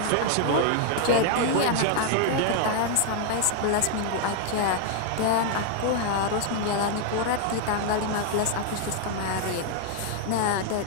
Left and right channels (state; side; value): different; both; correlation 0.00